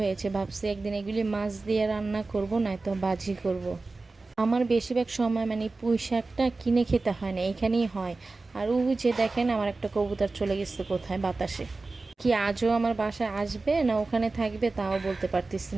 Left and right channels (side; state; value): left; quieter; 3.6 dB